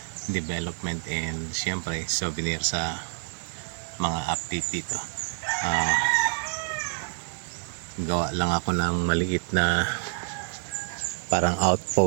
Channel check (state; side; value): silent; left; 60 dB below the other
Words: development and syempre souvenir sa mga update dito. Gawa lang ako ng maliit na parang